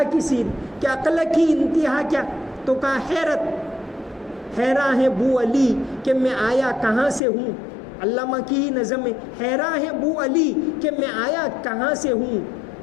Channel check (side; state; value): right; drops out; at 7.2 s